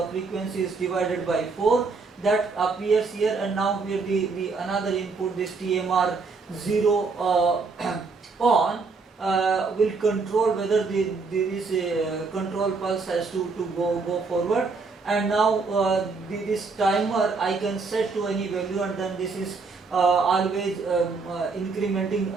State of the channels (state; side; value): quieter; left; 4.3 dB